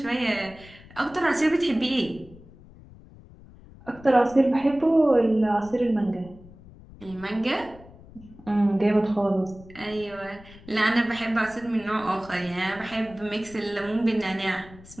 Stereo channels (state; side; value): noise; left; rumble, 21 dB below the sound